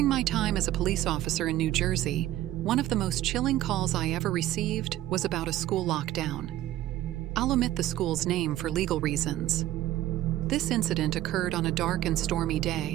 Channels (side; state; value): left; quieter; 14.0 dB